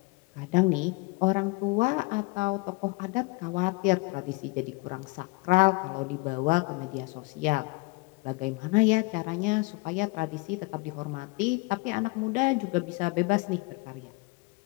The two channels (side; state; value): right; quieter; 27.2 dB